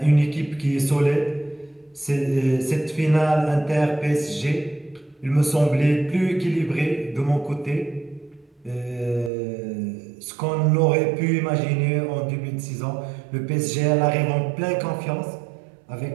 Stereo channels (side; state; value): left; drops out; at 9.3 s